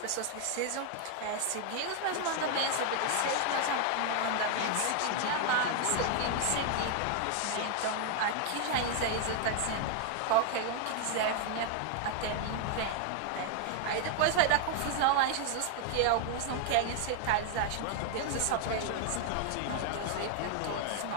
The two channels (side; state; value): both; different; correlation 0.00